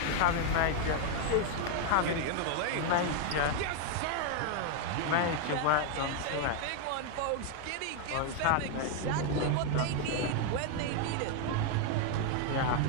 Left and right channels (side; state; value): both; different; correlation 0.00